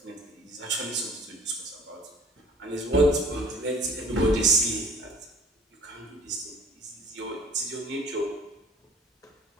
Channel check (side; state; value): both; normal; correlation 0.49